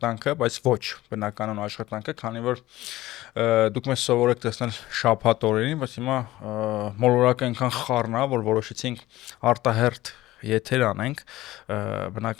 բայց ոչ բնականon աշխատանքը, քանի որ դուք մեզ սովորեք տեսնել շաբաթ օրերին, բայց հիմա մոլորակը այնքան խառն է, որ որոշեցինք արտահերթ եթեր անենք,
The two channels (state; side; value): quieter; right; 16.7 dB